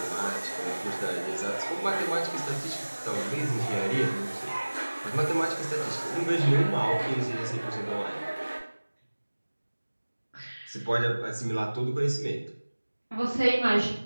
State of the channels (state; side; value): inverted; both; correlation -1.00